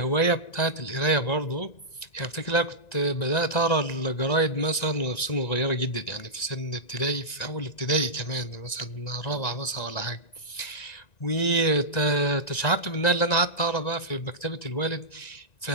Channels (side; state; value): right; late; 1.9 ms